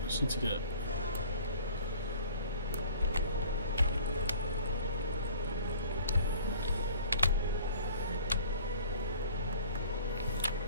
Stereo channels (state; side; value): inverted; both; correlation -0.48